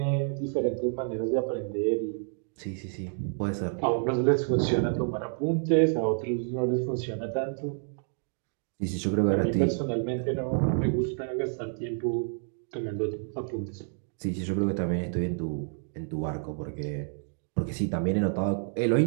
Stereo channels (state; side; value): silent; left; 59 dB below the other